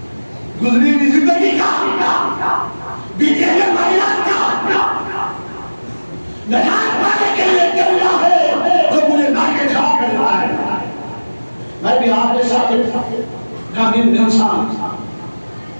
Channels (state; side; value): inverted; both; correlation -1.00